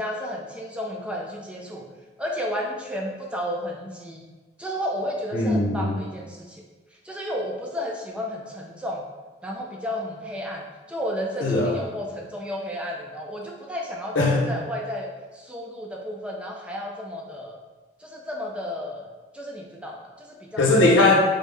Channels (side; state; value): both; normal; correlation 0.37